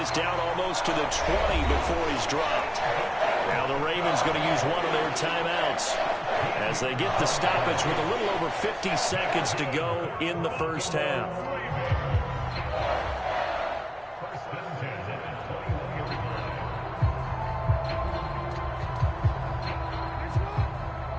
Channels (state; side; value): identical; both; correlation 1.00